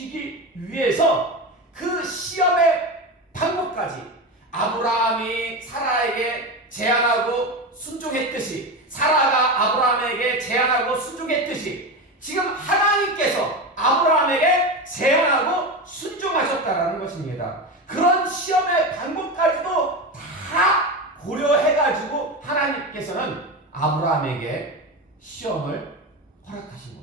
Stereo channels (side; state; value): both; normal; correlation 0.21